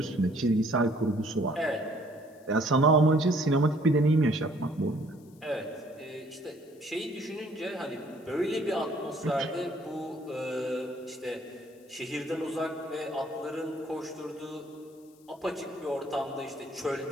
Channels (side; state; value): left; noise; hiss, 30 dB below the sound